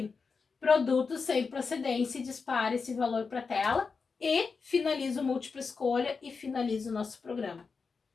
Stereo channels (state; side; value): quieter; right; 4.9 dB